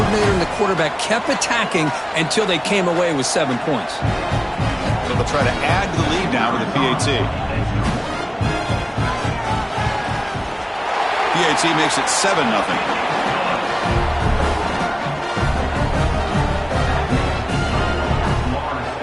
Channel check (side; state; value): both; identical; correlation 1.00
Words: and the quarterback kept attacking until they came away with 7 points. So they'll try to add to the lead now with the PAT. PAT makes it 7-0.